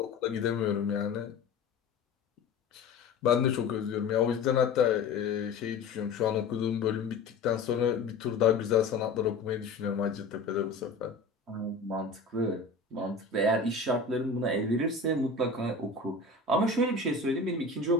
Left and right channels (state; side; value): quieter; right; 4.1 dB